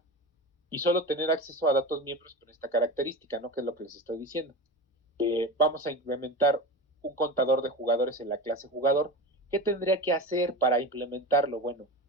Y solo tener acceso a datos miembros con esta característica, ¿no? Que es lo que les estoy diciendo. Vamos a implementar un contador de jugadores en la clase jugador. ¿Qué tendría que hacer para implementarlo? Bueno,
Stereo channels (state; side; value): normal; both; correlation 0.27